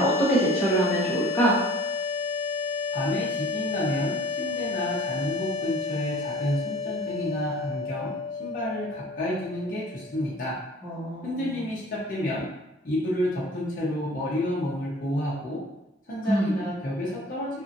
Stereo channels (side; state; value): both; normal; correlation 0.46